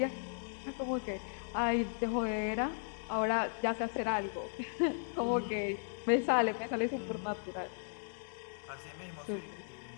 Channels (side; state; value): right; silent; digital silence